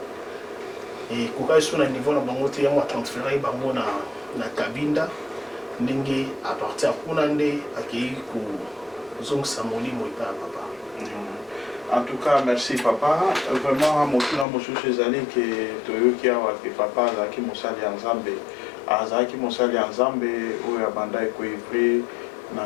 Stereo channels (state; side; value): drops out; right; at 14.5 s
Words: et kokaki so na niveau na bango te yango atransfere bango na Kabinda ndenge à partir ya kuna nde akei kozongisa molimo epai ya papa. En tout cas merci papa vraiment motuna mosusu ezali ke toyoki awa ke papa azalaki mosali ya nzambe oyo abanda ekoivre